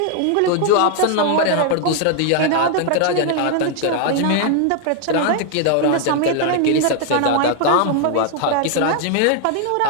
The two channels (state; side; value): different; both; correlation 0.00